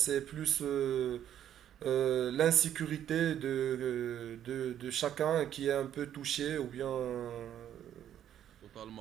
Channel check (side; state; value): left; quieter; 10.5 dB